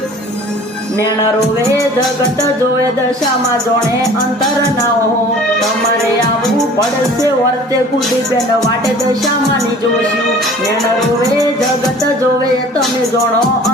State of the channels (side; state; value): both; normal; correlation 0.47